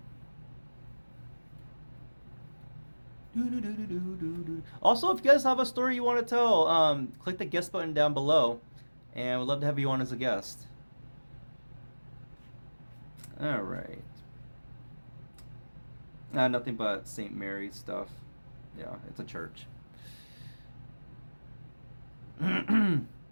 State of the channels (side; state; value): both; inverted; correlation -1.00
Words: Also, if you guys have a story you want to tell, click the guest button down below, and we'd love to have you on as a guest. All right. Nothing but St. Mary's stuff. Yeah, it's a church.